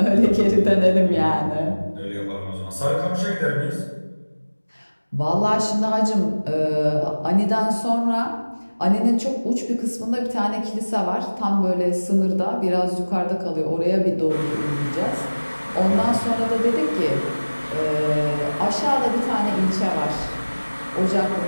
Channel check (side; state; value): both; inverted; correlation -1.00